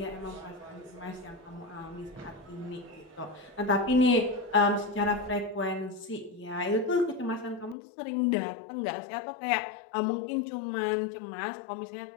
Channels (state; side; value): drops out; right; at 7.8 s